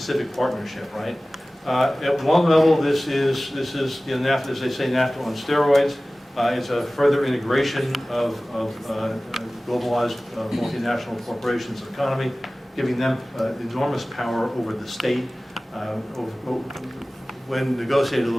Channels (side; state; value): both; normal; correlation 0.97